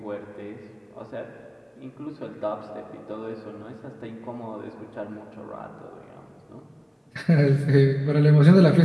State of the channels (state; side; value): identical; both; correlation 1.00